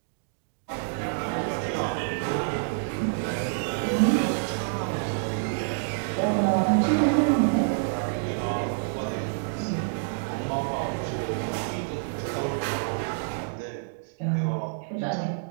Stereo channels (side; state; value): left; silent; digital silence